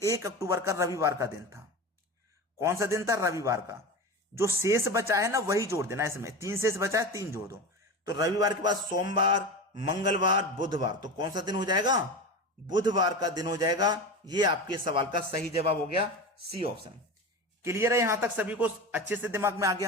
1 अक्टूबर का रविवार का दिन था। कौन सा दिन था? रविवार का। जो शेष बचा है ना वही जोड़ देना इसमें। 3 शेष बचा है, 3 जोड़ दो। तो रविवार के बाद सोमवार, मंगलवार, बुधवार, तो कौन सा दिन हो जाएगा? बुधवार का दिन हो जाएगा। ये आपके सवाल का सही जवाब हो गया, सी ऑप्शन। क्लियर है? यहां तक सभी को अच्छे से दिमाग में आ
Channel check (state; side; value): normal; both; correlation 0.26